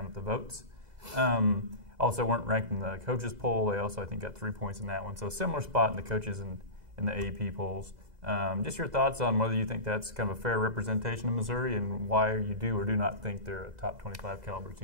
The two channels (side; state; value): left; late; 2.0 ms